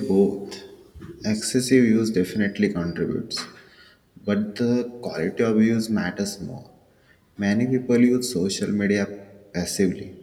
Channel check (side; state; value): both; identical; correlation 1.00